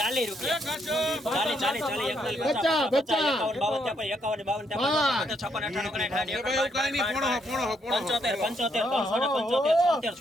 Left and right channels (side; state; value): both; normal; correlation 0.74